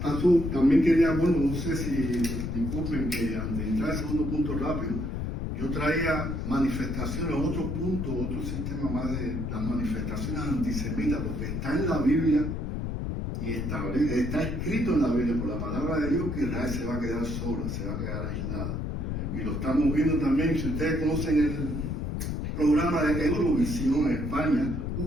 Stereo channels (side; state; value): left; noise; rumble, 3 dB below the sound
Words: azul. También quería, bueno, no sé si disculpen que antes de entrar al segundo punto rápido, yo traía manifestaciones, otro punto, otro sistema más de las manifestaciones antisemitas, porque está en la Biblia y está escrito en la Biblia por la palabra de Dios que Israel se va a quedar sola, se va a quedar aislada. Y lo estamos viendo también, si ustedes conocen el programa de Eurovisión en España,